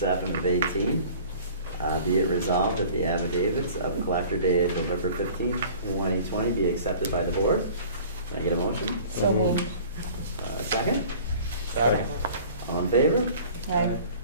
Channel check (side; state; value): both; inverted; correlation -0.47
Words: of 18. Be it resolved that the affidavits of collector dated November 15th, 2020 be accepted by the board. Can I get a motion? So moved. Second? Second. All in favor? Aye.